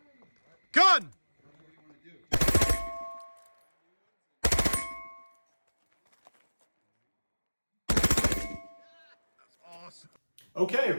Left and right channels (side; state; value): both; inverted; correlation -1.00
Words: Gun! That's awesome. Okay,